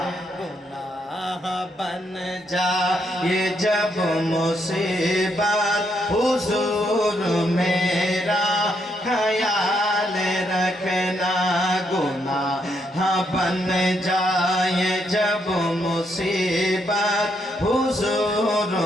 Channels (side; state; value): both; normal; correlation 0.76